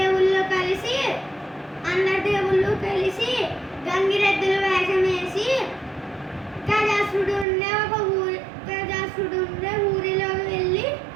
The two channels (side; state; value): left; drops out; at 7.5 s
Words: కలిసి అందరి దేవుళ్ళు కలిసి గంగిరెద్దుల వేషం వేసి గజాసురుడు ఉండే ఊరిలో వెళ్ళి